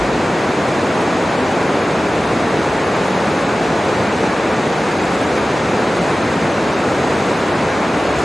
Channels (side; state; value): both; normal; correlation 0.96